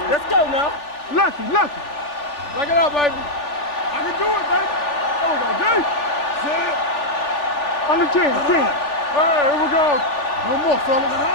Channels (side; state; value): right; late; 3.4 ms